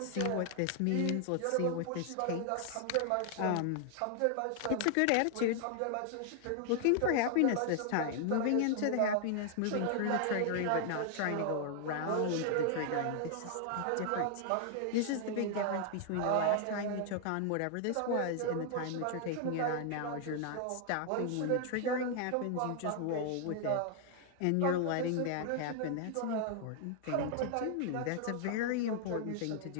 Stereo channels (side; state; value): both; different; correlation 0.00